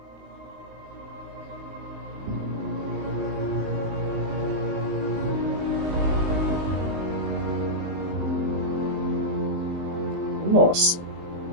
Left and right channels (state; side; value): late; left; 19 ms